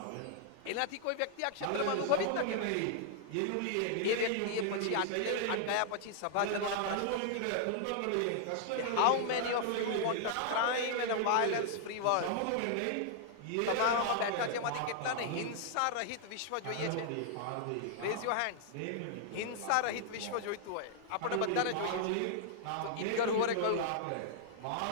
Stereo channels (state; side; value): different; both; correlation -0.01